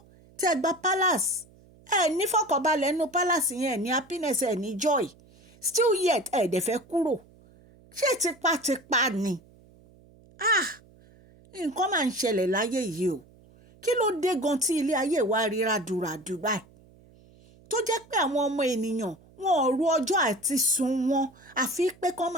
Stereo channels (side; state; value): right; noise; hum, 27 dB below the sound